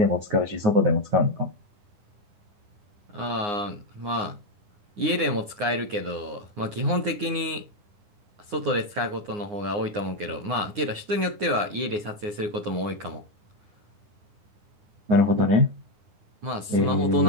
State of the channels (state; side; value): late; left; 9.7 ms